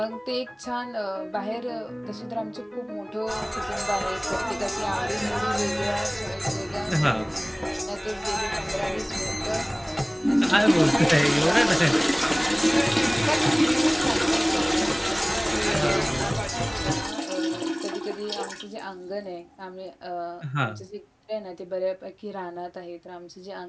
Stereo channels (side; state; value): both; identical; correlation 1.00